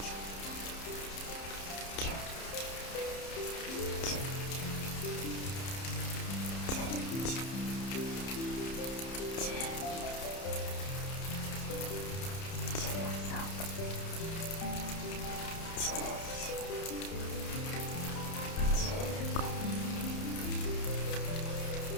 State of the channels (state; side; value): late; right; 30 ms